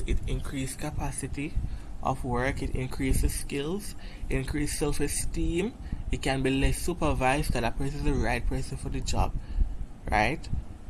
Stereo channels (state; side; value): identical; both; correlation 1.00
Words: it increases capacity of work, it increases skills, it increases self-esteem, it can be less supervised because that person is the right person for the job, right?